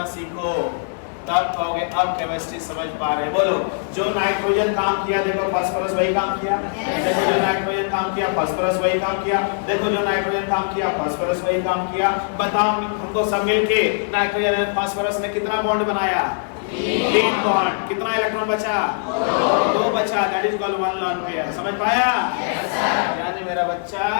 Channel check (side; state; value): right; silent; digital silence